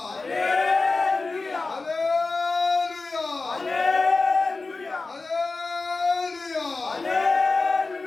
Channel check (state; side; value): quieter; right; 3.7 dB